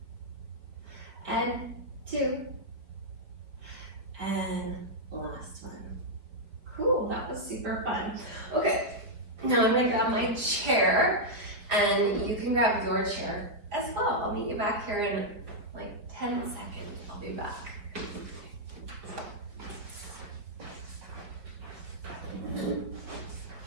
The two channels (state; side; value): late; left; 5.0 ms